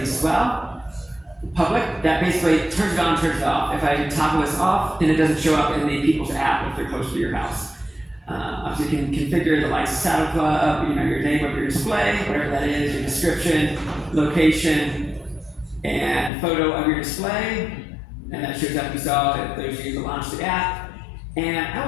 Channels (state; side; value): drops out; right; at 16.3 s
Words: as well. Public, that basically turns it on, turns it off. If I toggle this off, then it doesn't show up in the people's app if they're close to your house. Obviously, you can configure the lights, saddle club, your name of your display, whatever that is, your description, location, and photo of your display. And that shows up, you saw that there's you to launch the app. And I